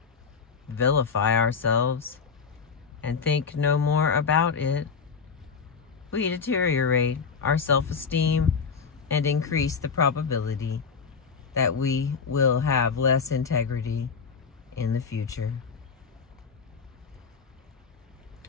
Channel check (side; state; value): right; quieter; 5.7 dB